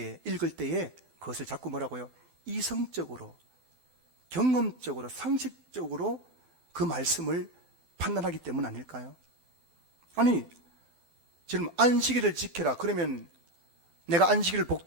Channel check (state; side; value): late; left; 12 ms